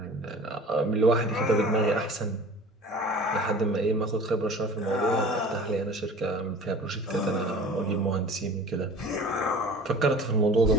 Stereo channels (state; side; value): normal; both; correlation 0.42